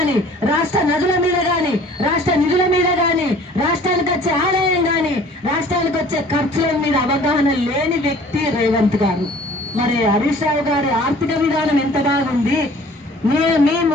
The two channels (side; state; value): both; normal; correlation 0.51